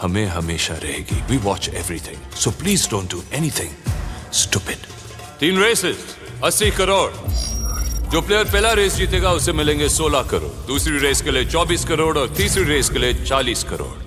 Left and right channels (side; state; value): both; identical; correlation 1.00